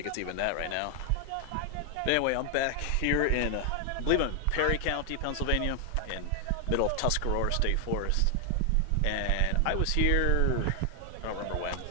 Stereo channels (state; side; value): different; both; correlation 0.00